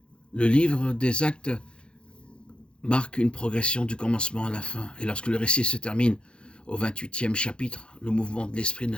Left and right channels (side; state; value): right; late; 0.055 ms